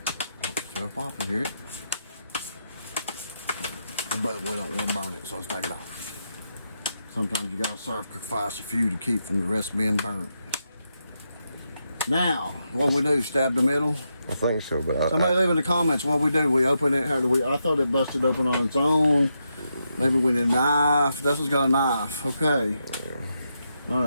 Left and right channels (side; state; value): both; inverted; correlation -0.83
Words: Still popping, hear it? But we don't want to burn it, so let's take it off. Sometimes you gotta sacrifice a few to keep from the rest being burnt. Now, what we do, stab the middle? I think so, but somebody leave in the comments what we do. We open it, how do we? I thought it busted open on its own. Maybe we need a knife. Dustin's got a knife. Okay. All